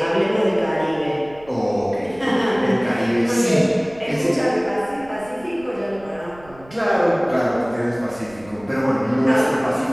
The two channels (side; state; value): right; noise; rumble, 23 dB below the sound